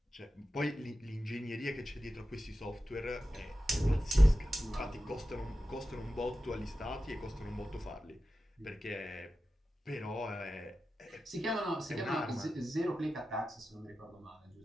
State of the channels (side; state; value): both; normal; correlation 0.93